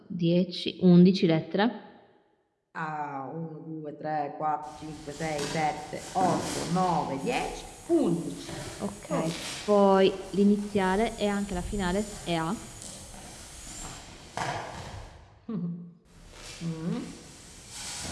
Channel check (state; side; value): identical; both; correlation 1.00